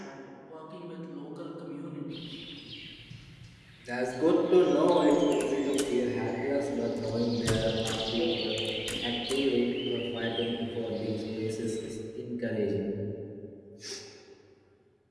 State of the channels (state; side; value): identical; both; correlation 1.00